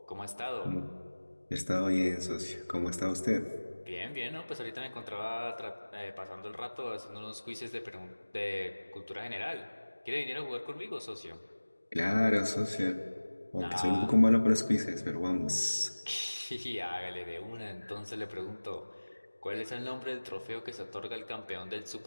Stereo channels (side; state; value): both; inverted; correlation -1.00